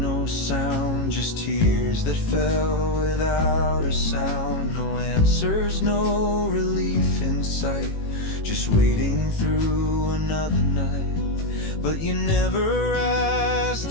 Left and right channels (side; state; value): right; late; 18 ms